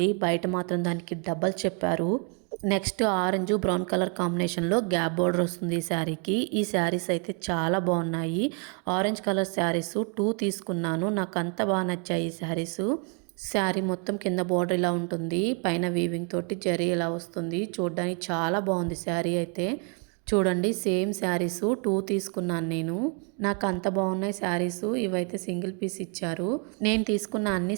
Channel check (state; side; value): quieter; left; 38.2 dB